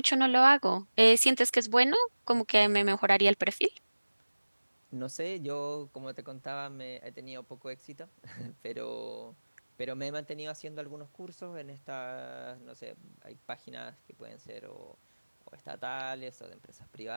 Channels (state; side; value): inverted; both; correlation -1.00